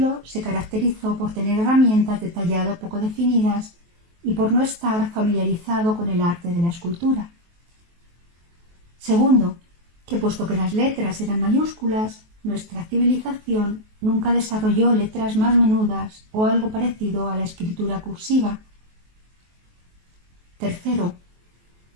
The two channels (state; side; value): late; left; 23 ms